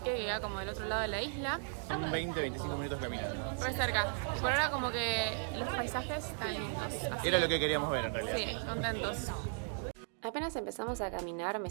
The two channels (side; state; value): left; silent; 54 dB below the other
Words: que queda como del otro lado de la isla. Son 20-25 minutos caminando. Muy cerca. Y por ahora como que los paisajes están lindos. Así Era lo que queríamos ver en realidad. sí, contentos. Apenas empezamos a caminar me